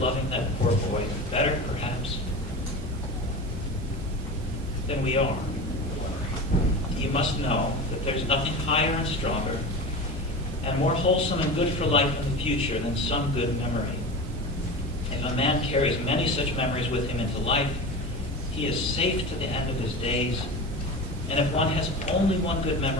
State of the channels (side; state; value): both; normal; correlation 0.28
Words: that poor boy better, perhaps, than we are. You must know that there's nothing higher and stronger and more wholesome and good for life in the future than some good memory. If a man carries many such memories with him into life, he is safe to the end of his days. And if one has only one good